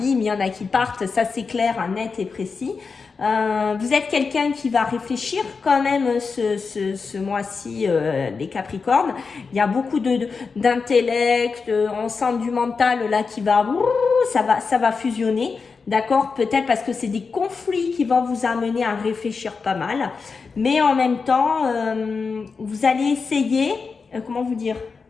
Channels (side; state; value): right; quieter; 4.9 dB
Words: il y en a qui partent. Ça, c'est clair, net et précis. Vous êtes quelqu'un qui va réfléchir quand même ce mois-ci, les Capricornes. Il y a beaucoup d'intellect, on sent du mental là qui va, ça va fusionner. D'accord? Peut-être parce que c'est des conflits qui vont vous amener à réfléchir pas mal. Mais en même temps, vous allez essayer, comment vous dire,